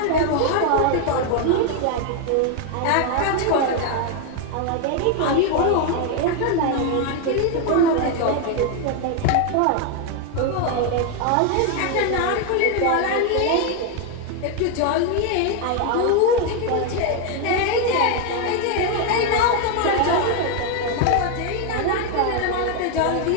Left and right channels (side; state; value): both; different; correlation 0.01